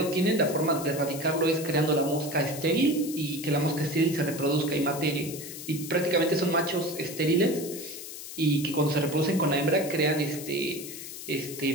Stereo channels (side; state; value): left; noise; hiss, 11 dB below the sound